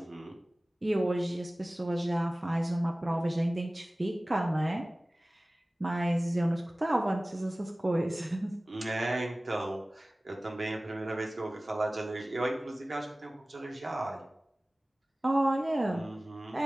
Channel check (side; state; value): both; normal; correlation 0.98